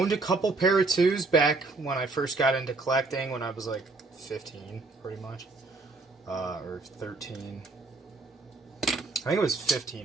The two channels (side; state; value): left; quieter; 3.5 dB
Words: a couple pair of twos back when I first got into collecting, when I was like 15, pretty much. Or 13. I think it was